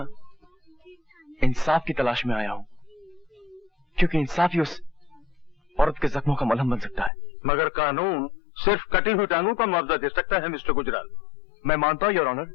इंसाफ की तलाश में आया हूं, क्योंकि इंसाफ ही उस औरत के जख्मों का मलहम बन सकता है। मगर कानून सिर्फ कटी हुई टांगों का मुआवजा दे सकता है मिस्टर गुजराल। मैं मानता हूं योर ऑनर,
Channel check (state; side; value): drops out; right; at 7.1 s